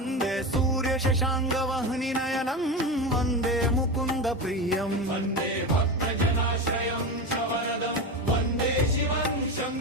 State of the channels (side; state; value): both; normal; correlation 0.21